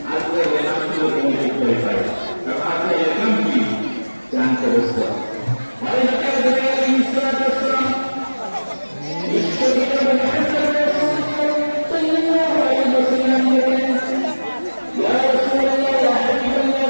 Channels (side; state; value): both; inverted; correlation -1.00